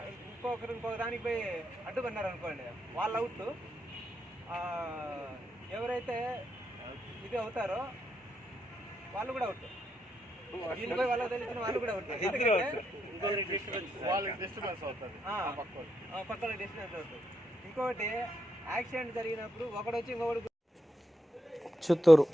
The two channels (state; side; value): normal; both; correlation 0.82